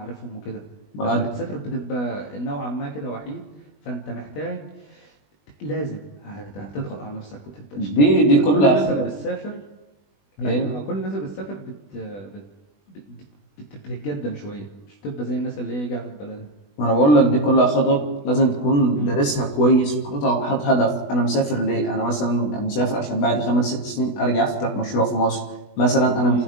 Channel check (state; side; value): late; right; 20 ms